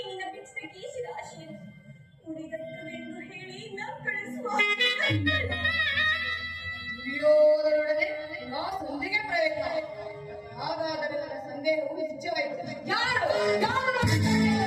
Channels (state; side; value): identical; both; correlation 1.00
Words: ನಿನ್ನ ಬಿಚ್ಚಿದ ಕೀಸಿದ ಆಶೆಯನ್ನು ಮುಡಿದತ್ತವೆಂದು ಹೇಳಿ ನ ಕಳಿಸುವ ದುರ್ಯೋಧನೊಡನೆ ನಾ ಸಂಧಿಗೆ ಪ್ರಯತ್ನ. ಹಾಗಾದರೆ ನನ್ನ ಸಂದೇಹವು ನಿಜವಾಯಿತು. ಯಾರು